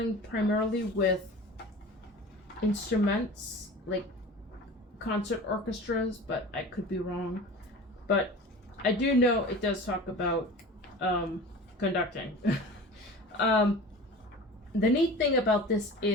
primarily with instruments, like concert orchestras, but I could be wrong. But I do know it does talk about conducting. The neat thing about this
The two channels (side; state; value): both; normal; correlation 0.37